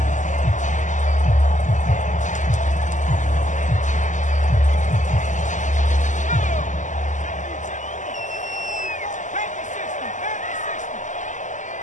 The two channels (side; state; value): right; late; 0.36 ms